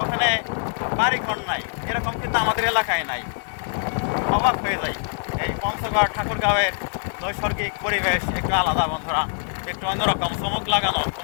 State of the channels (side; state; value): right; silent; digital silence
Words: ওখানে বাড়িঘর নাই, এরকম কিন্তু আমাদের এলাকায় নাই। অবাক হয়ে যায়। এই পঞ্চগড় ঠাকুরগাঁওয়ের নৈসর্গিক পরিবেশ একটু আলাদা বন্ধুরা, একটু অন্যরকম, চমক লাগানো।